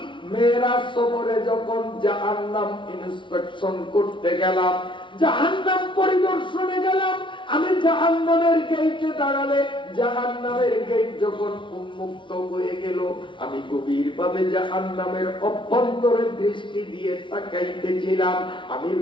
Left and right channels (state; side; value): late; right; 0.24 ms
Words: মেরাজ সফরে যখন জাহান্নাম ইন্সপেকশন করতে গেলাম, জাহান্নাম পরিদর্শনে গেলাম, আমি জাহান্নামের গেটে দাঁড়ালে জাহান্নামের গেট যখন উন্মুক্ত হয়ে গেল, আমি গভীরভাবে জাহান্নামের অভ্যন্তরে দৃষ্টি দিয়ে তাকাইতেছিলাম। আমি